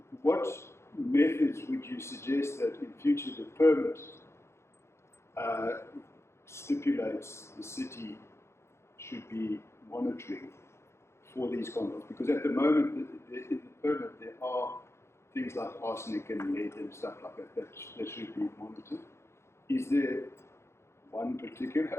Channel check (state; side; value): late; right; 0.13 ms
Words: what methods would you suggest that in future the permit stipulates the city should be monitoring for these compounds? Because at the moment, in the permit, there are things like arsenic and lead and stuff like that should be monitored. Is there one